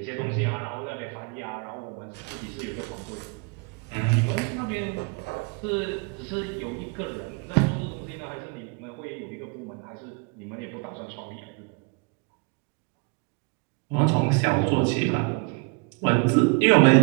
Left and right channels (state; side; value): quieter; left; 32.2 dB